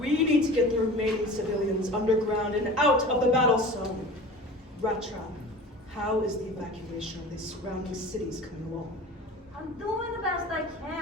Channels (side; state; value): both; normal; correlation 0.38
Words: need to get the remaining civilians underground and out of the battle zone. Rattrap, how is the evacuation of these surrounding cities coming along? I'm doing the best I